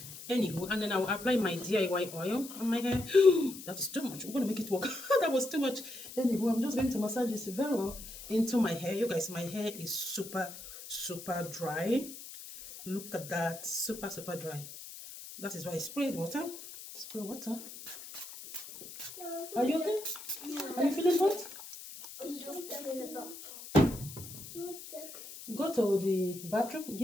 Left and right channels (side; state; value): left; noise; hiss, 13 dB below the sound